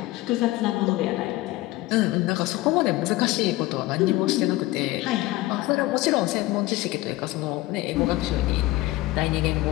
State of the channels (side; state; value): right; quieter; 18.6 dB